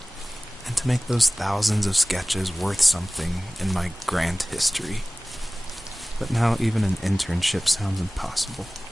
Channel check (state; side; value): normal; both; correlation 0.98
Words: and to make those thousands of sketches worth something in my grand history. But now even an internship sounds impossible.